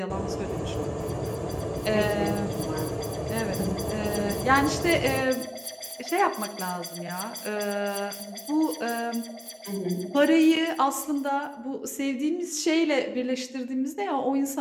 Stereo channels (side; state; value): both; identical; correlation 1.00